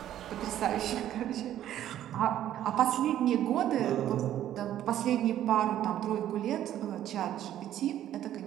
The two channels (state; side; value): quieter; left; 11.8 dB